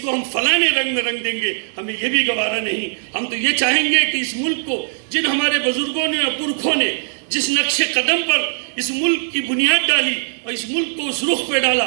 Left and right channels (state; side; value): silent; left; 66 dB below the other